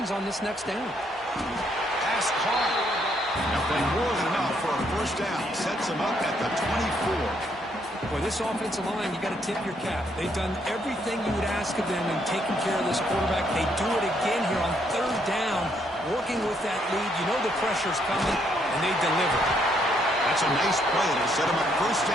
on this next down. Pass caught. Now playing more than enough for a first down. Sets him up at the 24. Boy, this offensive line, you got to tip your cap. They've done everything you would ask of them in taking care of this quarterback. They do it again here on third down, working with that lead. You know the pressure's coming, and they deliver. That's a nice play. It'll set him up first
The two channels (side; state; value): both; normal; correlation 0.72